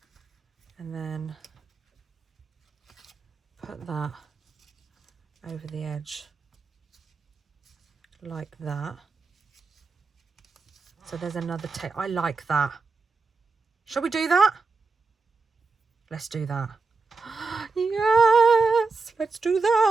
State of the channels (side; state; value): left; quieter; 4.2 dB